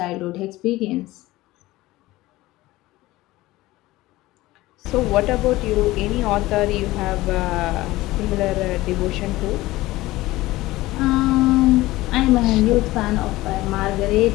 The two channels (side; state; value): right; quieter; 18.2 dB